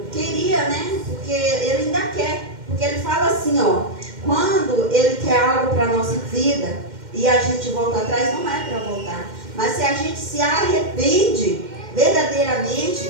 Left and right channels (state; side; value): late; left; 2.1 ms